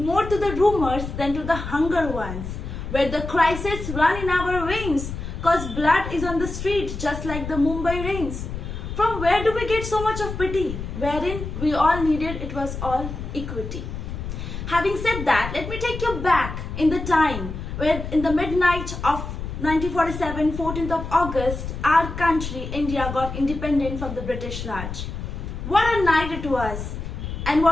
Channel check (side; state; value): left; noise; rumble, 7 dB below the sound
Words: more to the rumors than to the hunger ones, where the crises run in our veins cause blood is on the street just like the Mumbai rains. From where do we get so much of pity, wherein we all needed it was all equity? Having said that, let me take you back in the time where in the midnight of 1947, 14th of August, our country, India, got independent from the British Raj. What a night it was and